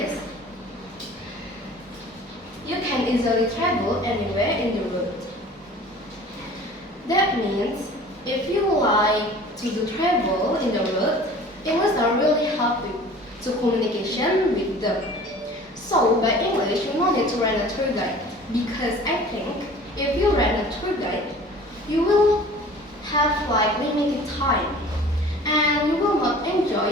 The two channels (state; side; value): normal; both; correlation 0.45